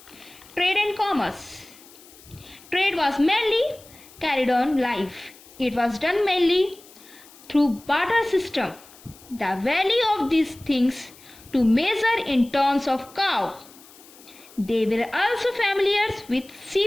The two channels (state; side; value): noise; left; hiss, 23 dB below the sound